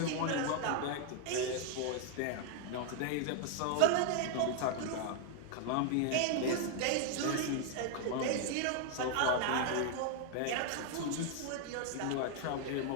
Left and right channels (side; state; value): both; different; correlation 0.00